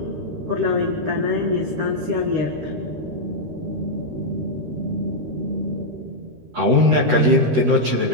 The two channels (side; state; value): left; late; 13 ms